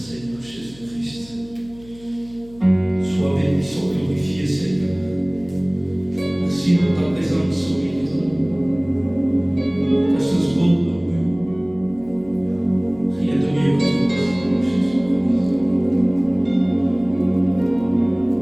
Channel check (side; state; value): left; noise; hum, 23 dB below the sound